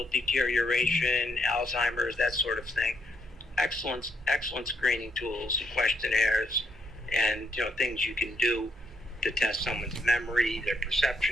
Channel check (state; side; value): normal; both; correlation 0.76